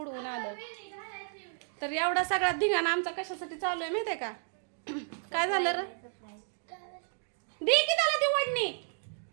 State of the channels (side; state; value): left; silent; digital silence